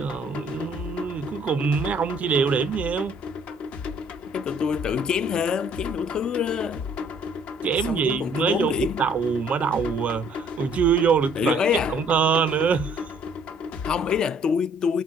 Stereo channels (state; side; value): normal; both; correlation 0.61